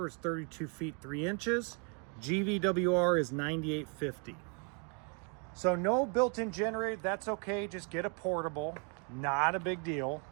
is 32 feet 3 inches. GVWR is 9850. So no built-in generator, that's okay. Just get a portable, not a big deal.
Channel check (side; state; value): left; quieter; 37.9 dB